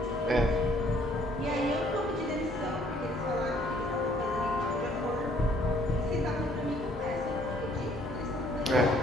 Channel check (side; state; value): both; normal; correlation 0.62